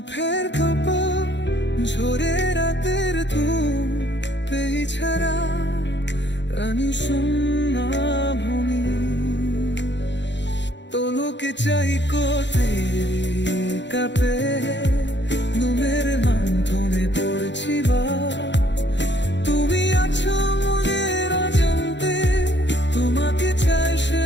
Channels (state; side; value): late; right; 0.52 ms